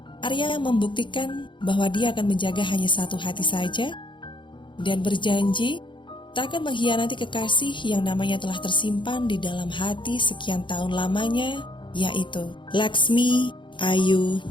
Arya membuktikan bahwa dia akan menjaga hanya satu hati saja, dan berjanji tak akan mengkhianati kekasih yang namanya telah tersimpan di dalam hati sekian tahun lamanya, yaitu Laksmi Ayu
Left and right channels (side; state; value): right; late; 0.23 ms